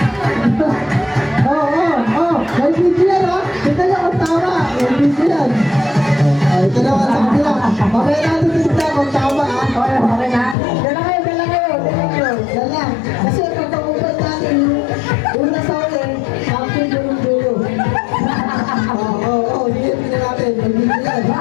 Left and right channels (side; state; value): right; drops out; at 10.6 s